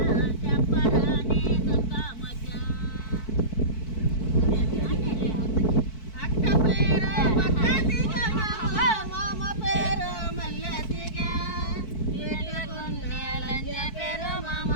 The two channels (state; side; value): late; right; 4.6 ms